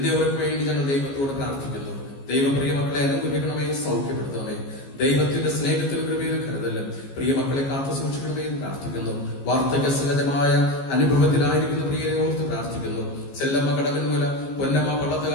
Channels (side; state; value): right; late; 15 ms